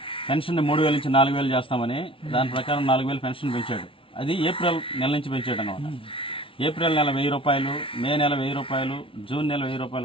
పెన్షన్ 3,000 నుంచి 4,000 చేస్తామని దాని ప్రకారం 4,000 పెన్షన్ పెంచాడు. అది ఏప్రిల్ నెల నుంచి పెంచాడు అన్నమాట. ఏప్రిల్ నెల 1,000 రూపాయలు, మే నెల 1,000 రూపాయలు, జూన్ నెల 1,000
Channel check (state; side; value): late; right; 0.25 ms